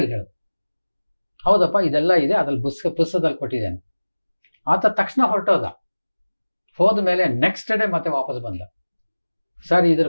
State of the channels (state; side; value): inverted; both; correlation -1.00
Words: ಹೇಳಿದ, ಹೌದಪ್ಪ ಇದೆಲ್ಲ ಇದೆ, ಅದ್ರಲ್ಲಿ ಪುಸ್ತಕದಲ್ಲಿ ಕೊಟ್ಟಿದ್ದೇನೆ. ಆತ ತಕ್ಷಣ ಹೊರಟೋದ. ಹೋದ ಮೇಲೆ ನೆಕ್ಸ್ಟ್ ಡೇ ಮತ್ತೆ ವಾಪಸ್ ಬಂದ. ಸರ್ ಇದ್ರ